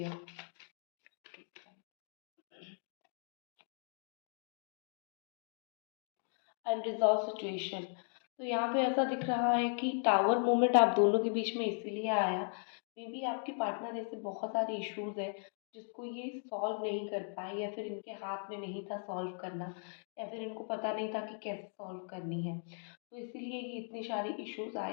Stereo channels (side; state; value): right; silent; 53 dB below the other